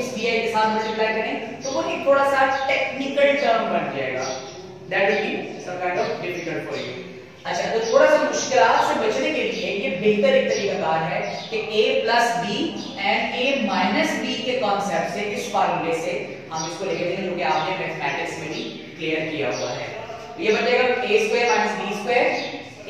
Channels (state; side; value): identical; both; correlation 1.00